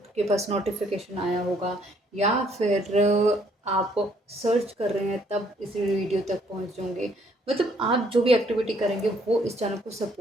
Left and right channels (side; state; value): both; normal; correlation 0.66